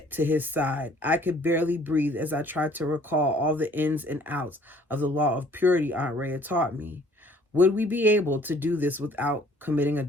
to his side. I could barely breathe as I tried to recall all the ins and outs of the law of purity Aunt Ray had taught me. Would we be able to do this without committing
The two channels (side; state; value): both; normal; correlation 0.57